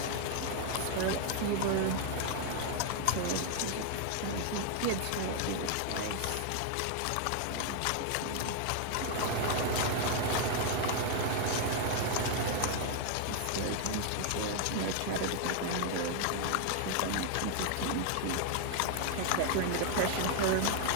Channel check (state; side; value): different; both; correlation 0.00